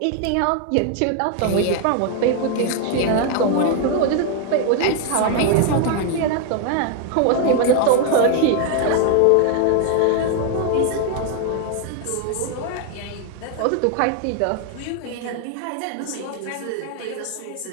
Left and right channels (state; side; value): different; both; correlation 0.00